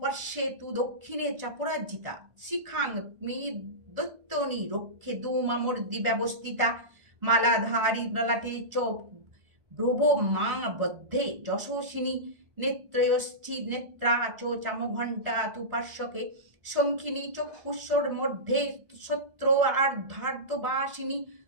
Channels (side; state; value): left; late; 1.6 ms